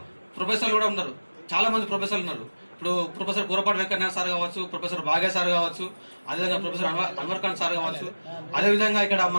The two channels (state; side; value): inverted; both; correlation -1.00